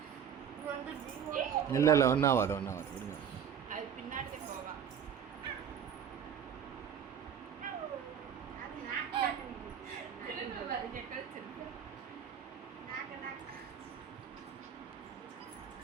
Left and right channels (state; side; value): quieter; left; 8.2 dB